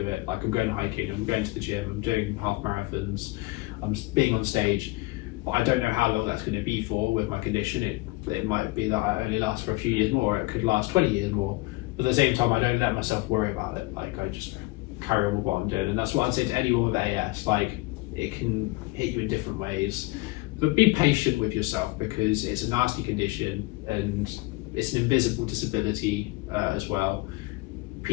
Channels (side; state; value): right; quieter; 22.2 dB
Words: Like, I'm going hiking, I'm going to the gym, I'm doing half marathons, I'm being on stage, but I don't know how long that's going to be for with my condition. It might be that I only last for a few years more, or it could last 20 years more. But at the same time, I don't let myself worry about it. Like, I just carry on with what I'm doing. And that's what I'd say to anyone with AS. Like, it can hit you in different ways. But be patient with yourself, because it's a nasty condition and it's an invisible disability as well.